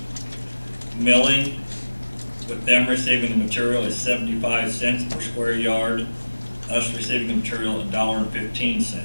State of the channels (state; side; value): inverted; both; correlation -1.00